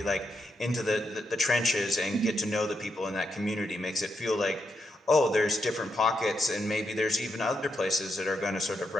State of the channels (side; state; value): both; normal; correlation 0.83